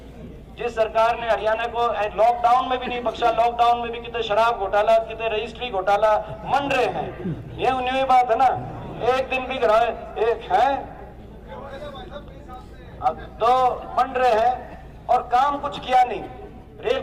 जिस सरकार ने हरियाणा को लॉकडाउन में भी नहीं बख्शा, लॉकडाउन में भी कितने शराब घोटाला, कितने रजिस्ट्री घोटाला मन रहे हैं। ये न्यू बात है ना, एक दिन भी कराए एक है, अब तो बन रहे हैं और काम कुछ किया नहीं। रेल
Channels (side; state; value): both; identical; correlation 1.00